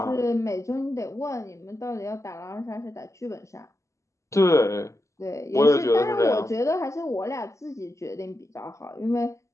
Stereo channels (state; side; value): late; right; 0.15 ms